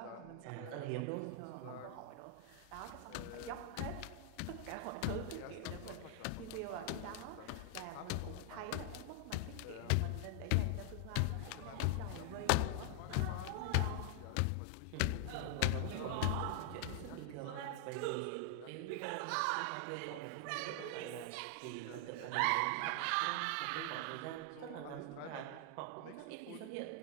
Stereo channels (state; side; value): different; both; correlation 0.00